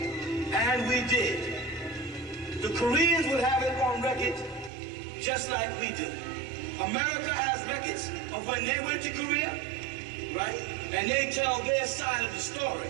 and we did, the Koreans would have it on record just like we do. America has records of when they went to Korea, right? And they tell their side of the story.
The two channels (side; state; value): left; drops out; at 4.7 s